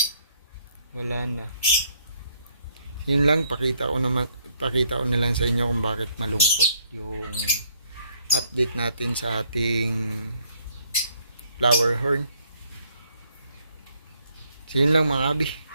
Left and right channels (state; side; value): inverted; both; correlation -0.69